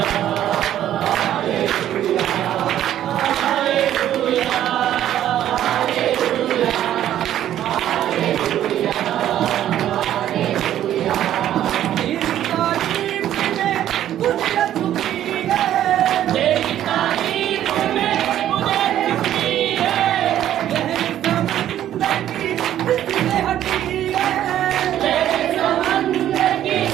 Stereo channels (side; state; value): left; quieter; 11.7 dB